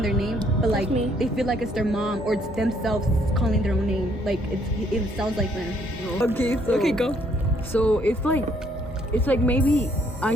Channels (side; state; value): both; normal; correlation 0.67